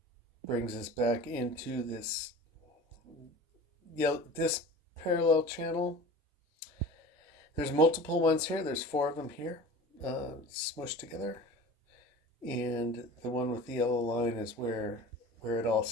brings us back into this parallel channel. There's multiple ones here. There's 4 of them here, smushed together. And the one with the yellow line is where it all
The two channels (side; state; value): both; normal; correlation 0.38